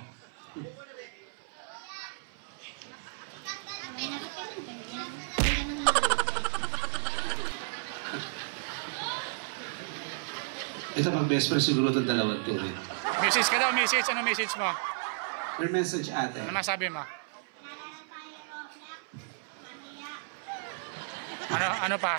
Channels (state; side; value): silent; left; 56 dB below the other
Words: Ito pag best friend siguro itong dalawang to rin. Message ka daw, message. Ano message mo? Your message, ate. Ano masabi mo? Ano pa?